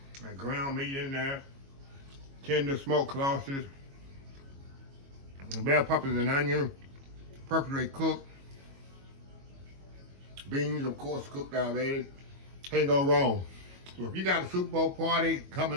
That ground meat in there. Tender smoked sausage. Bell peppers and onion. Perfectly cooked. Beans, of course, cooked already. Can't go wrong. So if you got a Super Bowl party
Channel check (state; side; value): late; left; 22 ms